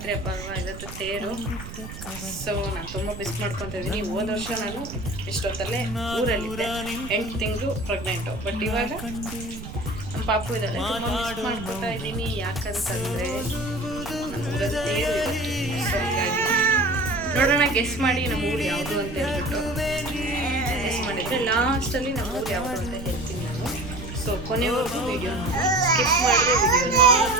ಹಬ್ಬ ಅಲ್ವಾ, ಇವತ್ತು ತೇರು. ಸೊ ನಾನು ತುಂಬ ಮಿಸ್ ಮಾಡ್ಕೊತಾ ಇದ್ದೀನಿ. ಹೋದ ವರ್ಷ ನಾನು ಇಷ್ಟೊತ್ತಲ್ಲೇ ಊರಲ್ಲಿದ್ದೆ, 8 ತಿಂಗಳು ಪ್ರೆಗ್ನೆಂಟು. ಬಟ್ ಇವಾಗ ನಮ್ಮ ಪಾಪು ಇದ್ದಾಳೆ, ತುಂಬ ಮಿಸ್ ಮಾಡ್ಕೊತಾ ಇದ್ದೀನಿ. ಯಾಕಂತಂದರೆ ನಮ್ಮೂರಲ್ಲಿ ತೇರು ಇವತ್ತು. ಸೊ ಹೀಗಾಗಿ ನೋಡೋಣ, ಗೆಸ್ ಮಾಡಿ ನಮ್ಮೂರು ಯಾವುದು ಅಂತ ಹೇಳ್ಬಿಟ್ಟು ಗೆಸ್ ಮಾಡಿದರೆ ಲಾಸ್ಟಲ್ಲಿ ನಮ್ಮೂರು ಯಾವುದು ಅಂತ ಹೇಳ್ತೀನಿ ನಾನು. ಸೊ ಕೊನೆವರೆಗೂ ವಿಡಿಯೋ ಸ್ಕಿಪ್ ಮಾಡಿದ್ರೆ ವಿಡಿಯೋ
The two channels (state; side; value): noise; right; rumble, 11 dB below the sound